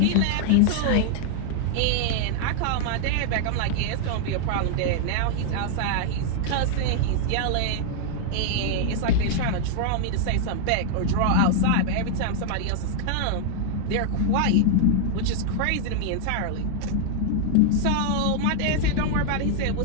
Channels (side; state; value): both; different; correlation 0.00